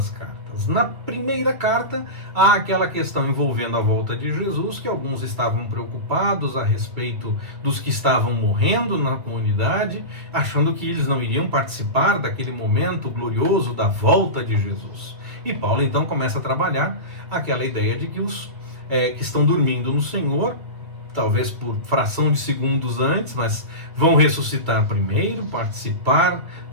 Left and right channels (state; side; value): late; left; 2.0 ms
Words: cartas. Na primeira carta, há aquela questão envolvendo a volta de Jesus, que alguns estavam preocupados a respeito dos que estavam morrendo na comunidade, achando que eles não iriam participar daquele momento glorioso da volta de Jesus. E Paulo então começa a trabalhar aquela ideia de que os que estão dormindo no Senhor, talvez por fração de segundos antes, mas vão ressuscitar primeiro, participar